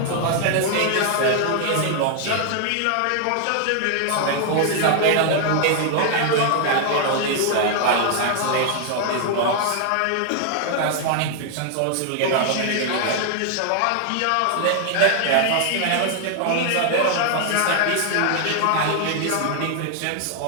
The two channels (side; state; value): both; different; correlation 0.00